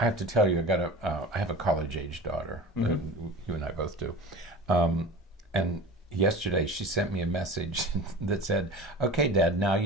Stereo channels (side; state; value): both; normal; correlation 0.35